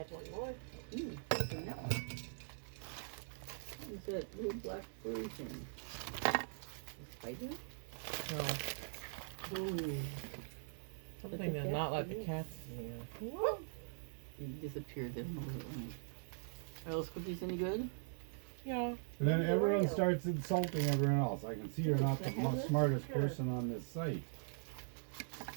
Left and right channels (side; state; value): left; silent; digital silence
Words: one more. What's in that one? What's that little black furry thing? A spider? No. Ooh. Something to not let the cats see. He disappeared. They don't know where it went. Are those cookies any good? Yeah. And then Maybe everyone Oreo. starts insulting everyone else. I can see you're not the smartest person on this site.